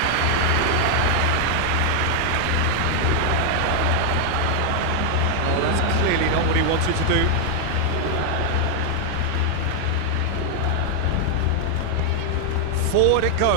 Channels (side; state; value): both; different; correlation 0.00